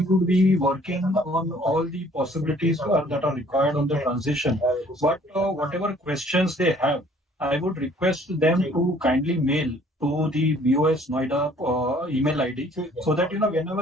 would be working on all the possibilities that are required on the transition. But whatever questions they have, I would request them to kindly mail to the BOS Noida email ID, so that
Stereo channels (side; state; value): both; normal; correlation 0.57